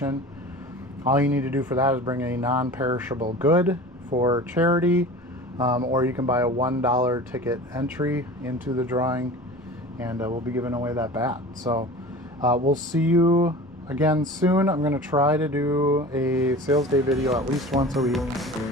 All you need to do for that is bring a non-perishable good for charity, or you can buy a $1 ticket entry into the drawing, and we'll be giving away that bat. So we'll see you again soon. I'm going to try to do a sales day video at least once a week,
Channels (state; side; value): normal; both; correlation 0.38